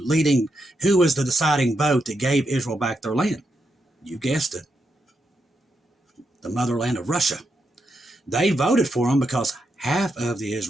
deciding vote that gave Israel back their land? You guessed it. The motherland of Russia. They voted for them because half of the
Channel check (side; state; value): both; normal; correlation 0.83